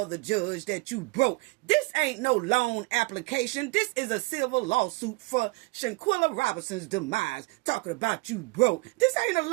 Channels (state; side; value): quieter; left; 26.1 dB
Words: the judge that you broke? This ain't no loan application. This is a civil lawsuit for Shanquella Robinson's demise. Talking about you broke. This ain't a